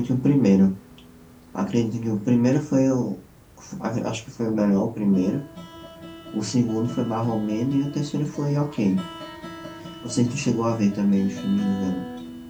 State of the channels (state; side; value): identical; both; correlation 1.00